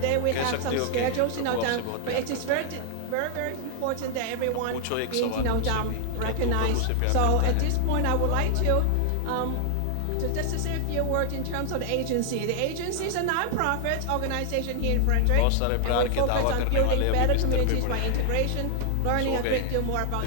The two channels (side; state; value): both; different; correlation 0.00